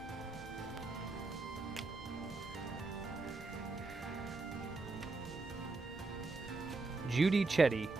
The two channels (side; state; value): left; quieter; 3.6 dB